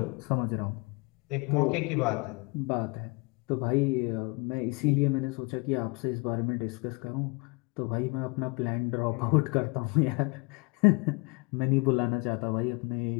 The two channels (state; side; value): quieter; right; 29.7 dB